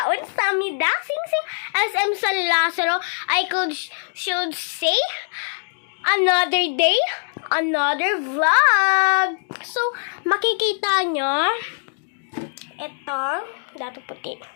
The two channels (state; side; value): silent; right; digital silence